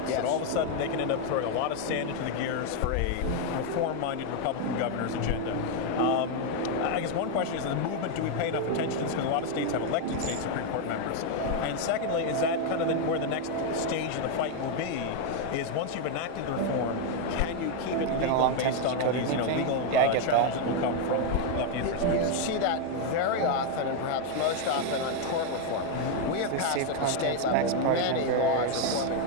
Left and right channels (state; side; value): different; both; correlation 0.01